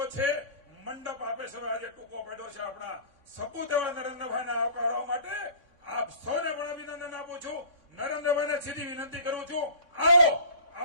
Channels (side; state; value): right; late; 3.6 ms